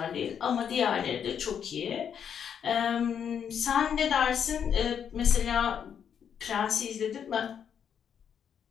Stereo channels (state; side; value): quieter; right; 8.0 dB